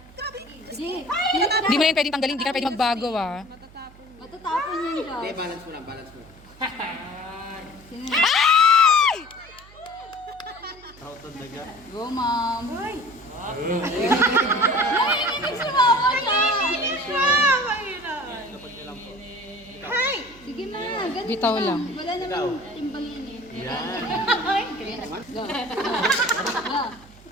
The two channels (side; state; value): right; noise; hum, 23 dB below the sound